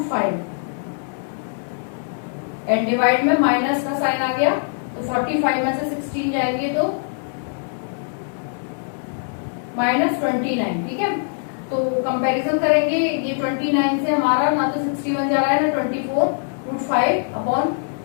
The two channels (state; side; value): silent; right; digital silence